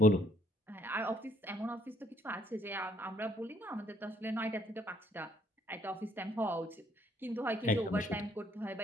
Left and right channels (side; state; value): both; normal; correlation 0.66